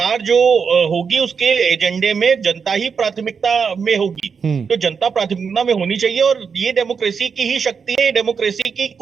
जो होगी उसके एजेंडे में जनता ही प्राथमिकता में होगी। तो जनता प्राथमिकता में होनी चाहिए। और ये डेमोक्रेसी की ही शक्ति है, डेमोक्रेसी की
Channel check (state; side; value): quieter; left; 6.0 dB